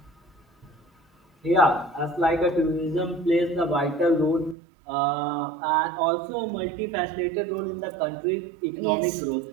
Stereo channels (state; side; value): drops out; left; at 4.5 s